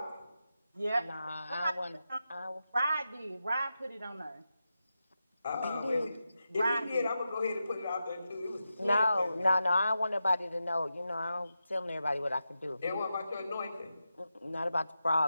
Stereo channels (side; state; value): both; inverted; correlation -0.90